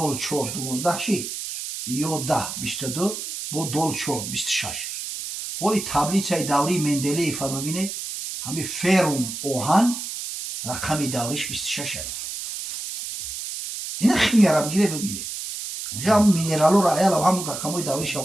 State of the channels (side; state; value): right; noise; hiss, 6 dB below the sound